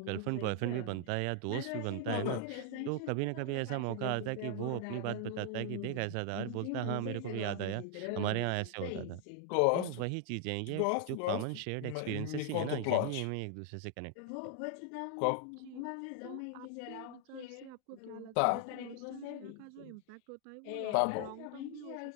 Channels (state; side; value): different; both; correlation 0.00